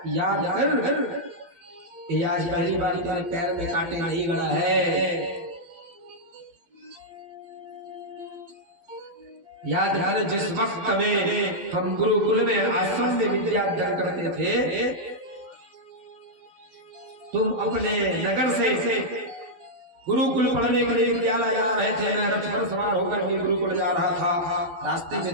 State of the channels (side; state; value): left; late; 12 ms